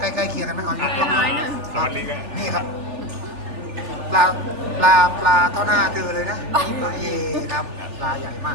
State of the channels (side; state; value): left; late; 3.4 ms